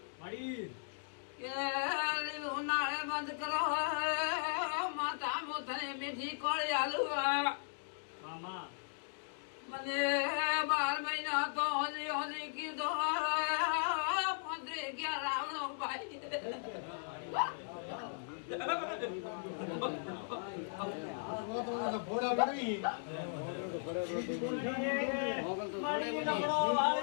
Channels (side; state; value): right; silent; digital silence